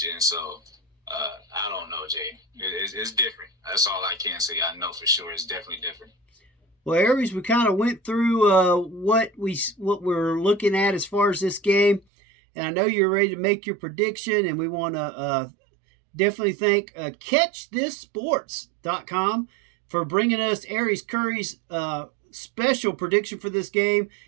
and so I don't know, Jay. It's different. That's all I can say. I know for sure it's definitely different. Well, Airese, we kind of went through what we're looking at as far as this game, and I know you're ready to make your prediction, and we want to definitely thank CatchThisSports.com for bringing us Airese Currie's special prediction for this game.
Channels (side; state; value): left; drops out; at 12.0 s